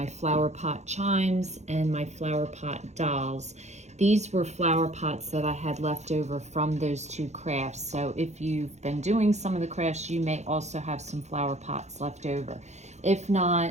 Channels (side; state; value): left; late; 0.33 ms